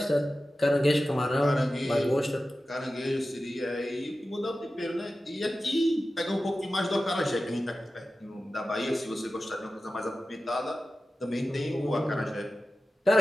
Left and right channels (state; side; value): normal; both; correlation 0.94